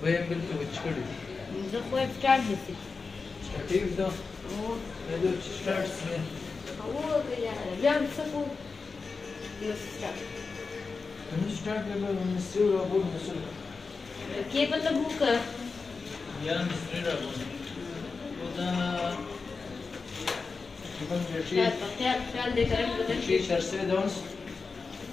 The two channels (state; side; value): quieter; right; 4.5 dB